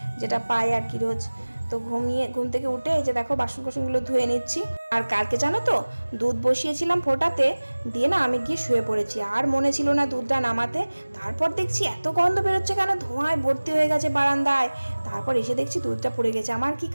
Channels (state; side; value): inverted; both; correlation -1.00